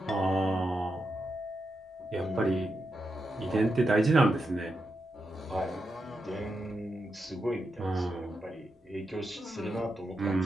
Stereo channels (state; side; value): normal; both; correlation 0.86